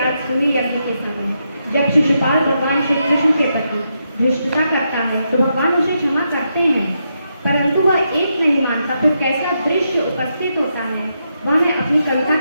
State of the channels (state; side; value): inverted; both; correlation -0.82